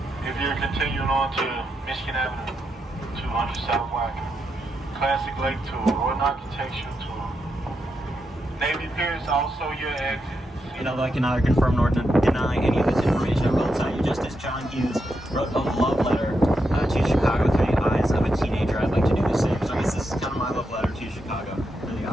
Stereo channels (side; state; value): both; normal; correlation 0.84